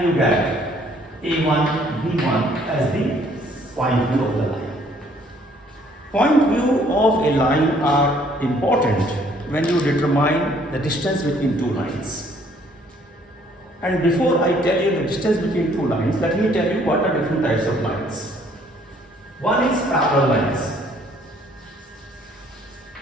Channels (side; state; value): both; normal; correlation 0.62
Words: you get A1, B1 as the point view of the line. Point view of a line are important when you determine the distance between two lines. And before I tell you the distance between two lines, let me tell you what are different types of lines. One is parallel lines.